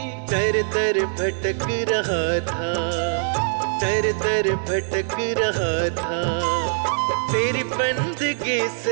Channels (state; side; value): silent; left; 64 dB below the other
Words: दर दर भटक रहा था, दर दर भटक रहा था तेरी बंदगी